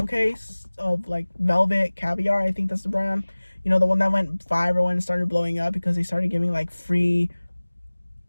case of like Velvet Caviar. I think that's the brand. You know, the one that went viral and started blowing up because they started giving like free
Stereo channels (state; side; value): inverted; both; correlation -1.00